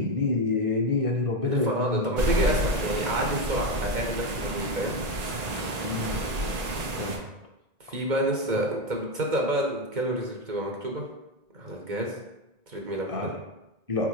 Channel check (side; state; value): left; late; 1.9 ms